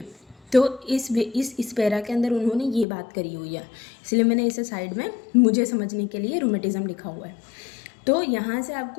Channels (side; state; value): right; drops out; at 2.9 s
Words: तो इस पैरा के अंदर उन्होंने ये बात करी हुई है, इसलिए मैंने इसे साइड में मुझे समझने के लिए रूमेटिज्म लिखा हुआ है। तो यहाँ से